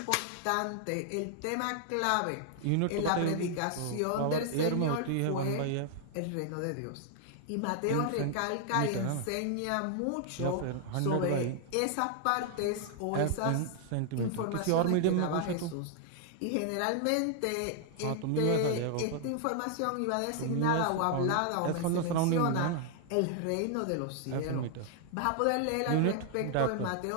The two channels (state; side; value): different; both; correlation 0.00